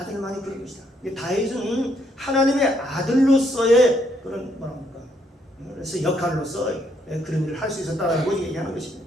것이다. 다윗은 하나님의 아들로서의 그런 그래서 역할로서 그런 일을 할 수 있었다라고 얘기하는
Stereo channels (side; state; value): both; normal; correlation 0.72